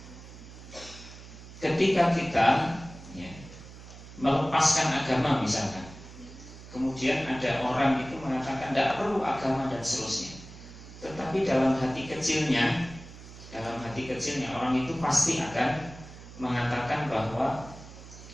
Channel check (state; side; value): noise; right; hum, 16 dB below the sound